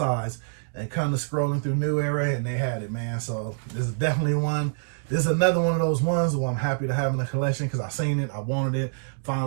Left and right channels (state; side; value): silent; left; digital silence